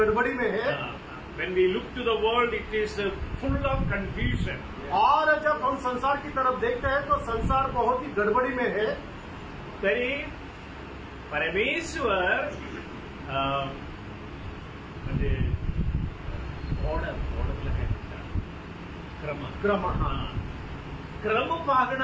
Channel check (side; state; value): both; identical; correlation 1.00